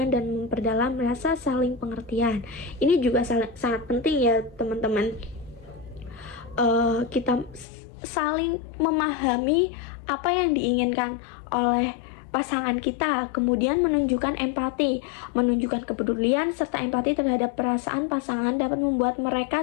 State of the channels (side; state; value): right; drops out; at 7.7 s